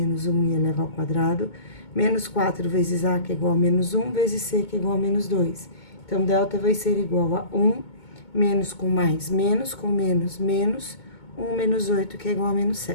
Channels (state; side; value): late; right; 2.2 ms